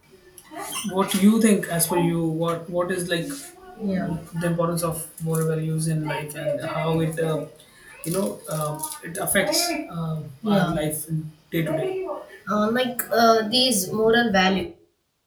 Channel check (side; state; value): both; identical; correlation 1.00